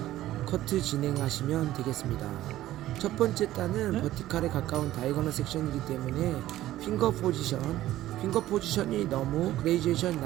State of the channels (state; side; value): quieter; left; 14.5 dB